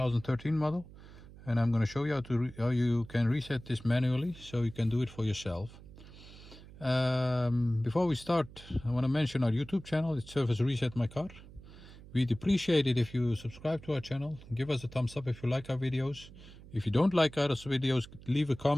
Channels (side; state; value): right; noise; hum, 18 dB below the sound